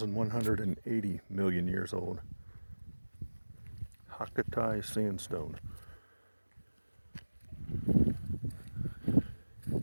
million years old. Hakkatai sandstone.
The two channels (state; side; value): inverted; both; correlation -1.00